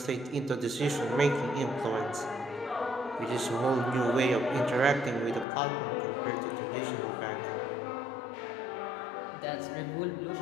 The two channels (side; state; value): right; drops out; at 5.5 s